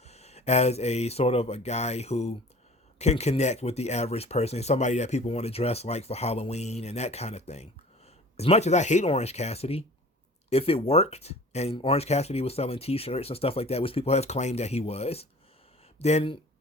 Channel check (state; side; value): normal; both; correlation 0.44